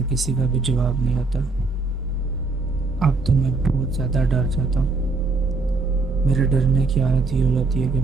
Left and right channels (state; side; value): quieter; left; 3.7 dB